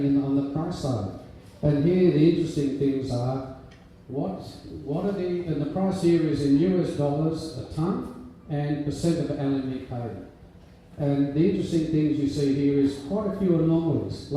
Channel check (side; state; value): both; identical; correlation 1.00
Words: on the price side? And here the interesting things are what are and the price here is in US dollars a tonne and percent of LME paid. And the interesting things you see here is quite a few anomalies.